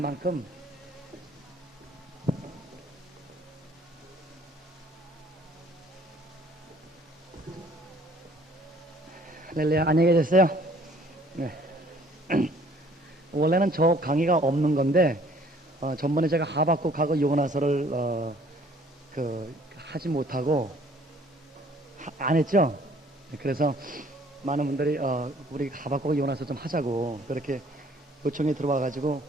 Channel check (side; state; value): both; normal; correlation 0.58